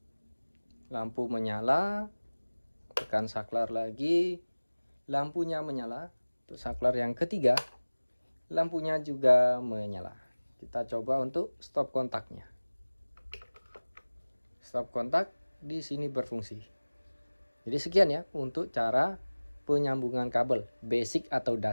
lampu menyala, tekan saklar lagi, lampunya menyala. Untuk saklar yang ketiga, lampunya juga menyala. Kita coba untuk stop kontaknya. Stop kontak di sini berfungsi. Jadi sekian ya untuk cara penyambungan kabel basic atau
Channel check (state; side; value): inverted; both; correlation -1.00